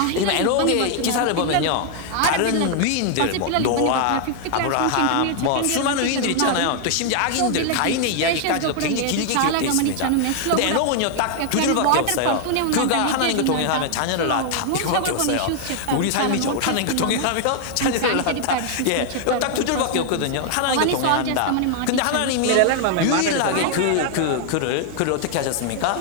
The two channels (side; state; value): both; different; correlation 0.00